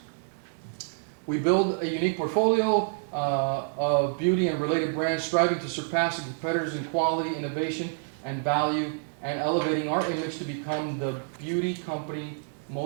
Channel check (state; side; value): silent; left; digital silence